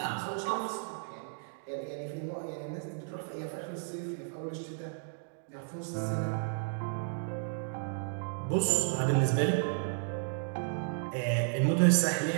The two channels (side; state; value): left; silent; digital silence